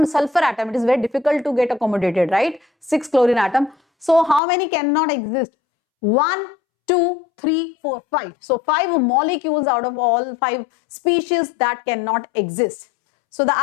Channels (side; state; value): right; drops out; at 4.4 s